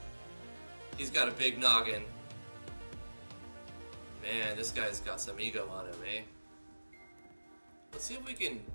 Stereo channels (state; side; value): inverted; both; correlation -1.00